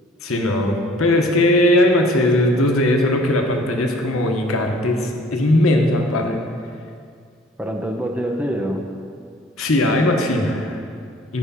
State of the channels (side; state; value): both; normal; correlation 0.53